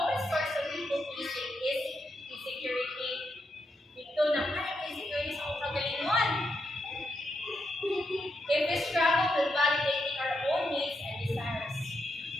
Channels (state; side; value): normal; both; correlation 0.82